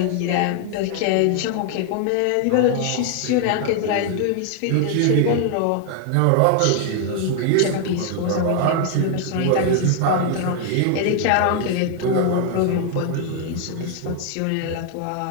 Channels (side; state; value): both; different; correlation 0.00